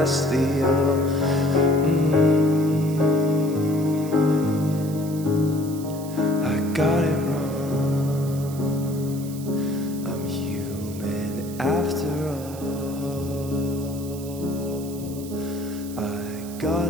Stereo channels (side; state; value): right; noise; hiss, 16 dB below the sound